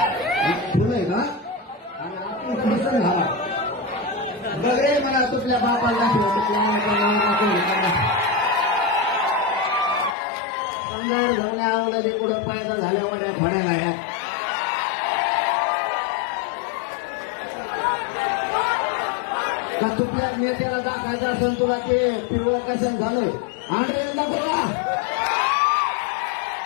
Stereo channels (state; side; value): drops out; right; at 10.2 s